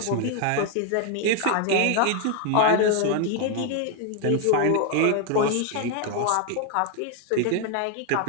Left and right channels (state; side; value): different; both; correlation 0.01